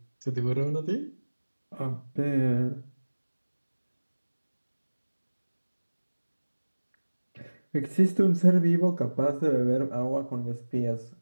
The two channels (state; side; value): inverted; both; correlation -1.00